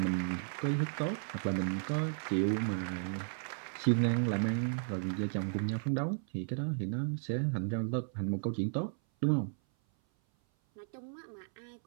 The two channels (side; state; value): left; silent; 55 dB below the other